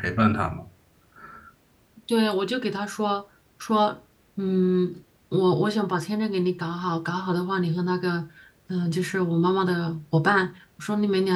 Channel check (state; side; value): identical; both; correlation 1.00